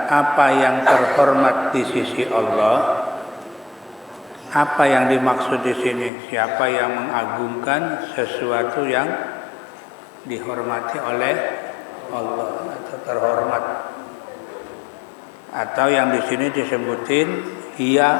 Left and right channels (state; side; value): drops out; right; at 6.1 s